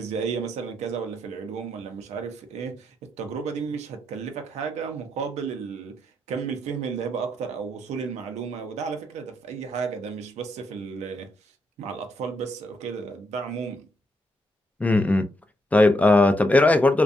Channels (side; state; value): both; normal; correlation 0.79